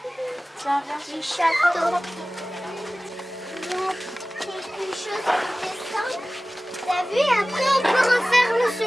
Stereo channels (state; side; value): normal; both; correlation 0.97